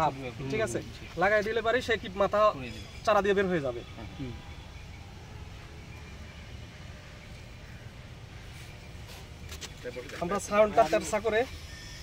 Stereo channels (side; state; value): both; identical; correlation 1.00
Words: ঠিক আছে, লাগাই দিলে পারি সে কি মাথা চারা দিয়ে বের হয়ে যাবে। আমরা ছায়নটা তেরসা করে